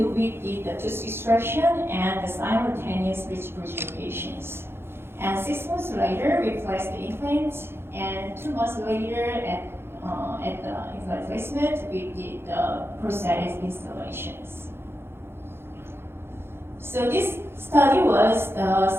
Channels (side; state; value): left; late; 0.11 ms